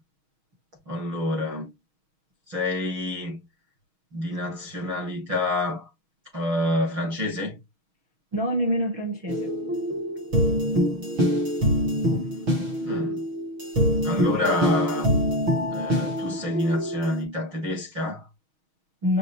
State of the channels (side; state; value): left; late; 6.3 ms